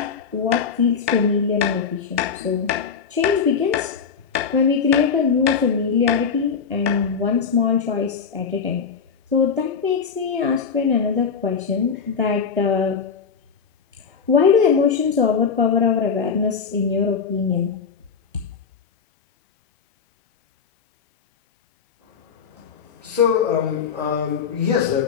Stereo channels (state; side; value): quieter; right; 6.2 dB